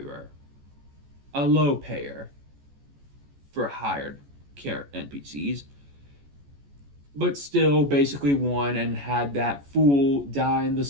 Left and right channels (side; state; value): left; late; 14 ms